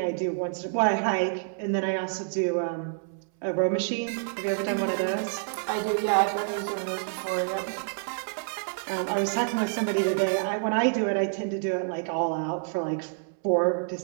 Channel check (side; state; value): left; silent; 59 dB below the other